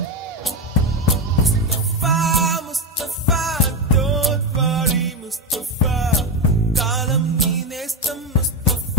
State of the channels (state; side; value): normal; both; correlation 0.14